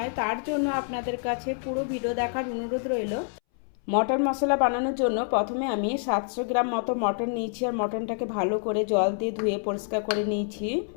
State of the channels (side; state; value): right; silent; 60 dB below the other